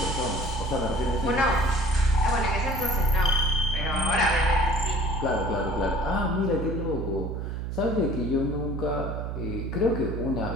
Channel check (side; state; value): right; noise; hum, 4 dB below the sound